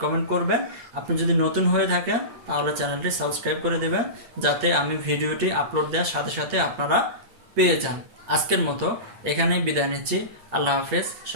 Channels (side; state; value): left; late; 8.9 ms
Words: কমেন্ট করবেন। আপনি যদি নতুন হয়ে থাকেন তাহলে চ্যানেলটি সাবস্ক্রাইব করে দেবেন, যাতে আমি ভিডিওটি আপলোড দেওয়ার সাথে সাথে আপনারা পেয়ে যান। আজকের মতো এখানেই বিদায় নিচ্ছি। আল্লাহ হাফেজ,